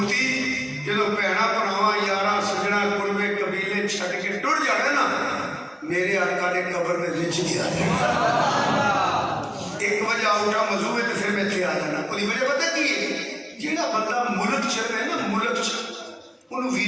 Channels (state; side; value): identical; both; correlation 1.00